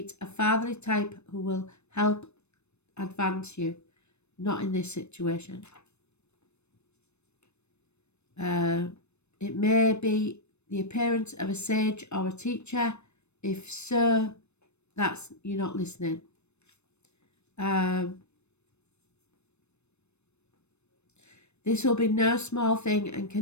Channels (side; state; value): right; late; 0.81 ms